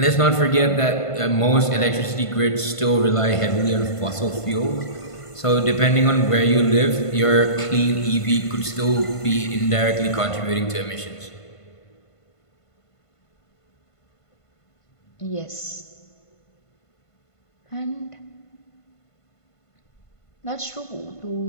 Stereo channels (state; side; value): late; right; 1.5 ms